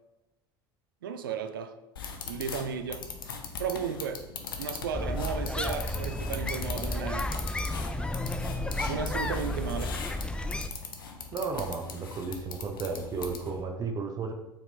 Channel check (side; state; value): both; normal; correlation 0.40